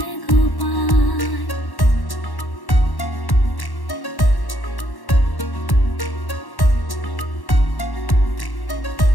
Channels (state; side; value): late; right; 1.1 ms